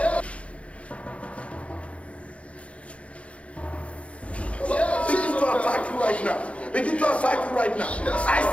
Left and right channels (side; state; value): right; late; 0.063 ms